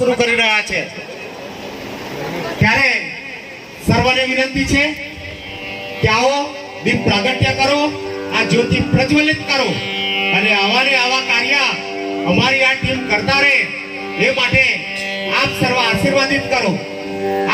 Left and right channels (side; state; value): both; identical; correlation 1.00